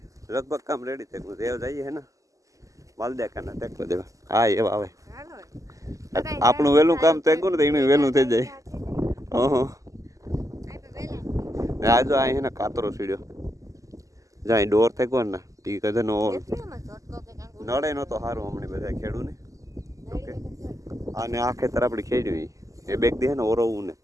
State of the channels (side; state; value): left; late; 0.16 ms